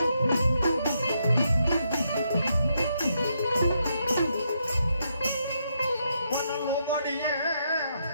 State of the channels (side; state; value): both; inverted; correlation -0.79